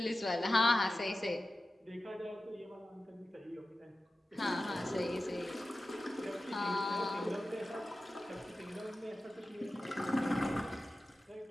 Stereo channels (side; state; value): both; normal; correlation 0.95